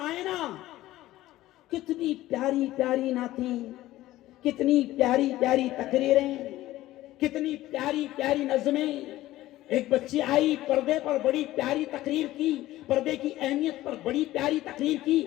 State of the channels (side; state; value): right; quieter; 15.8 dB